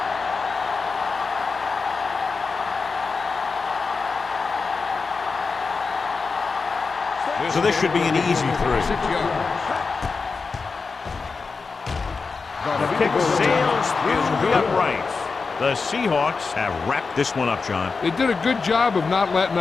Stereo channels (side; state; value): right; quieter; 4.6 dB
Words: So this should be an easy 3. 6 yards. The kick sails through the uprights. The Seahawks have wrapped this one up, John. They did a good job of not letting